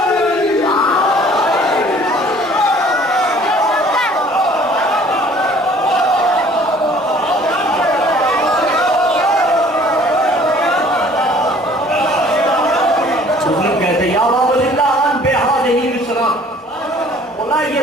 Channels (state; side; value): normal; both; correlation 0.54